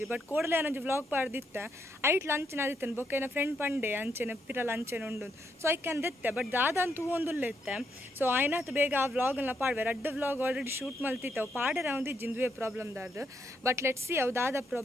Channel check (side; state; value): both; normal; correlation 0.77